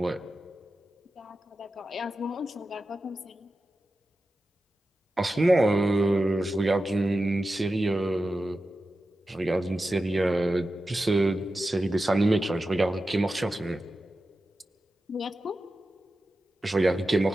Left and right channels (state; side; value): normal; both; correlation 0.92